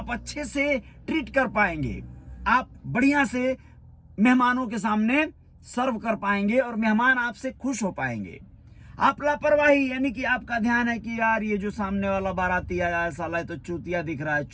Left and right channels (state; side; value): identical; both; correlation 1.00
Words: अच्छे से ट्रीट कर पाएंगे, आप बढ़िया से मेहमानों के सामने सर्व कर पाएंगे और मेहमान आपसे खुश हो पाएंगे। आप लापरवाही, यानी कि आपका ध्यान है कि यार ये जो सामने वाला बाराती आया है साला तो चूतिया दिख रहा है,